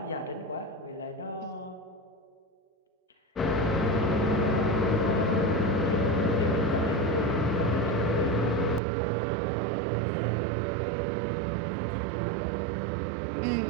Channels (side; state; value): left; drops out; at 8.8 s